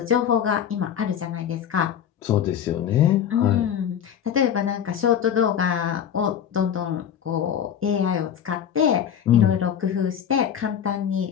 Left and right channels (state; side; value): quieter; right; 8.9 dB